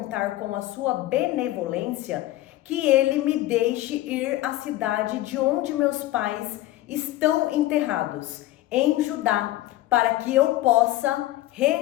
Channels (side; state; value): right; quieter; 15.9 dB